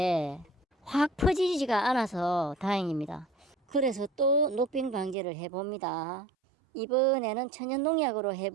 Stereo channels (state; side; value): drops out; left; at 5.2 s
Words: 확 퍼지지가 않아서 다행입니다. 그래서 또 녹병 방지를 해봅니다. 이번에는 천연농약으로